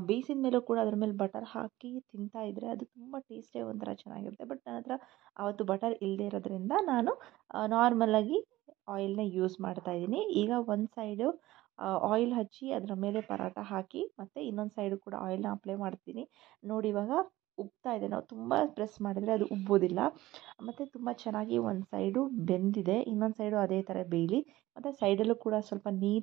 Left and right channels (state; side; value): quieter; left; 17.0 dB